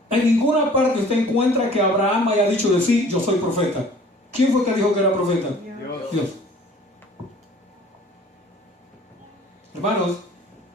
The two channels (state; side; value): normal; both; correlation 0.50